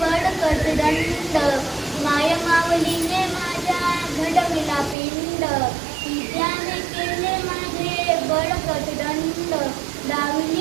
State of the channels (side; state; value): left; drops out; at 5.0 s